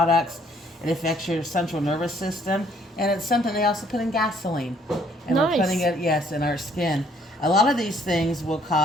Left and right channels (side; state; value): both; normal; correlation 0.64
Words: It affects your central nervous system, and it's something they also put in gasoline. And Nice. we're putting it, yes, in our skin. A lot of these things will